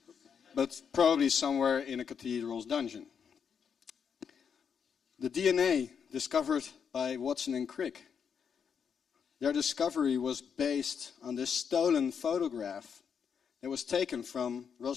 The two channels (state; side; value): quieter; right; 7.0 dB